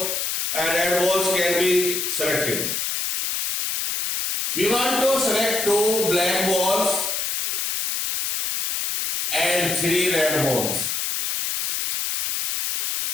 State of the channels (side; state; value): left; noise; hiss, 1 dB below the sound